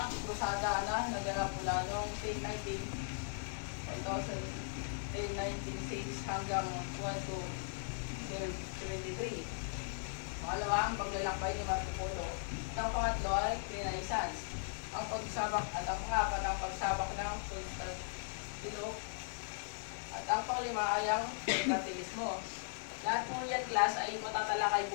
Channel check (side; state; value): right; silent; digital silence